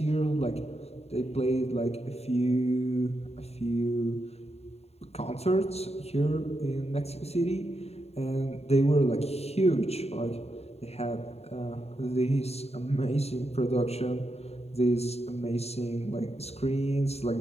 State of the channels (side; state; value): right; late; 0.30 ms